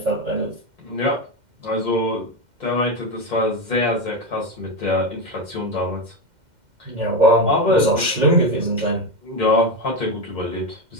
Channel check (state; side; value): late; left; 2.1 ms